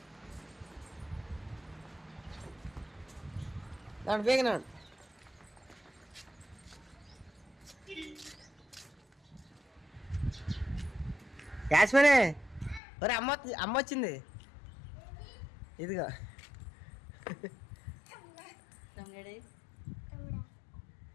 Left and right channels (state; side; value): drops out; right; at 12.8 s